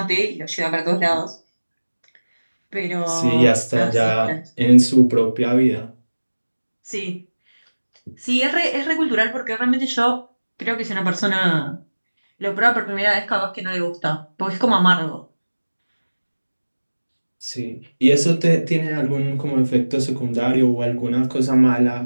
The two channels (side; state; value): both; inverted; correlation -1.00